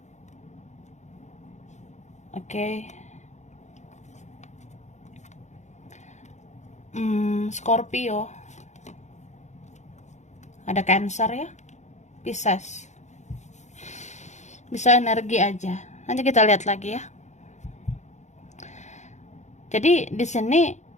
Oke. Scorpio. Ada Cancer ya. Pisces. Bisa energi aja. Nanti kita lihat lagi ya. Jadi di sini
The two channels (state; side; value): late; right; 0.34 ms